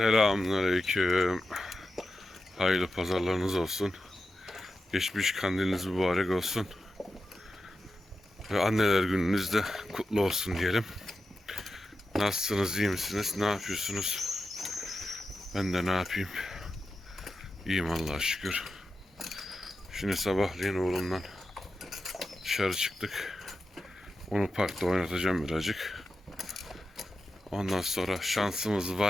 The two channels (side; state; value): both; normal; correlation 0.91